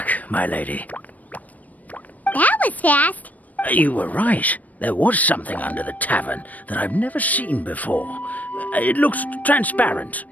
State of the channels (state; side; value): late; right; 0.075 ms